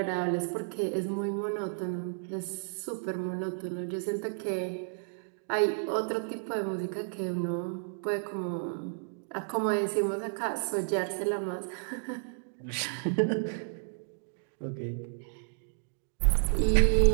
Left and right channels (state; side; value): silent; left; digital silence